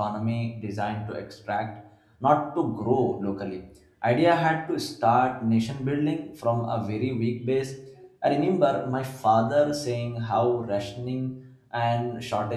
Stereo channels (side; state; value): both; identical; correlation 1.00